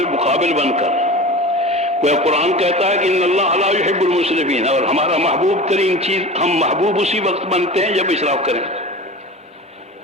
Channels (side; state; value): both; normal; correlation 0.34